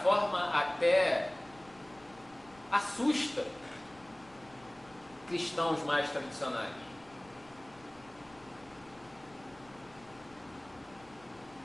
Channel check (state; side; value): noise; left; rumble, 25 dB below the sound